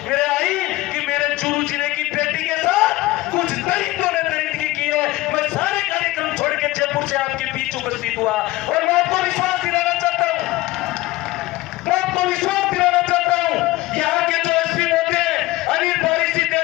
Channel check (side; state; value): right; quieter; 18.6 dB